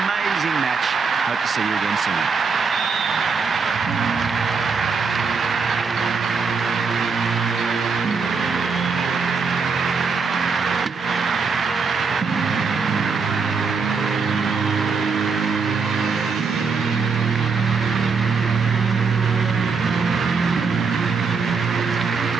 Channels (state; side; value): quieter; left; 5.1 dB